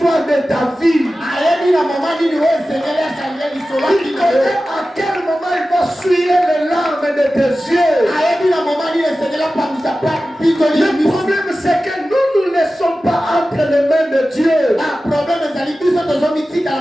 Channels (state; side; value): normal; both; correlation 0.95